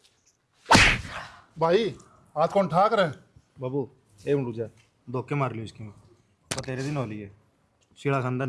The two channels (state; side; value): identical; both; correlation 1.00